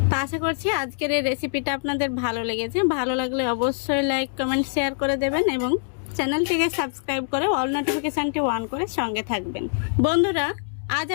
তো আশা করছি আজকের এই রেসিপিটা আপনাদের ভালো লেগেছে। ভালো লাগলে অবশ্যই লাইক কমেন্ট শেয়ার করে দেবেন এবং চ্যানেলটিকে সাবস্ক্রাইব করে অল নোটিফিকেশনটি অন করে সঙ্গে থাকবেন। বন্ধুরা আজ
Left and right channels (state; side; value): silent; right; digital silence